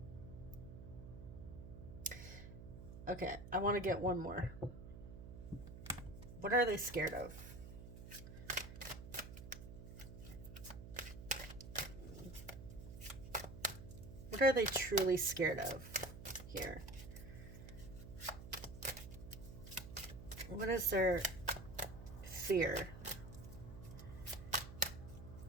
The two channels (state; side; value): noise; right; hum, 12 dB below the sound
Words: Okay, I want to get one more. What are they scared of? are they truly scared of here? What is their fear